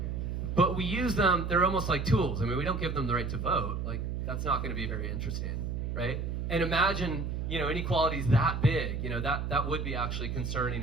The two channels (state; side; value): noise; right; hum, 3 dB below the sound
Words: But we use them, they're almost like tools. I mean, we don't give them the right to vote. That's not going to be very interesting, right? And imagine, inequalities that big, that would be actually concerning